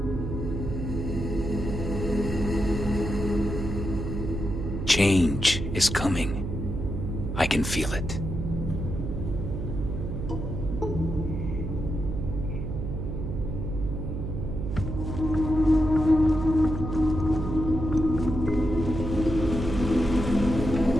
Change is coming. I can feel it.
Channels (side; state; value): right; noise; hum, 4 dB below the sound